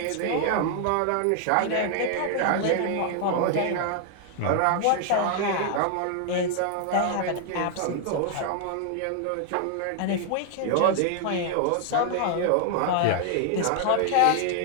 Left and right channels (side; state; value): both; different; correlation 0.00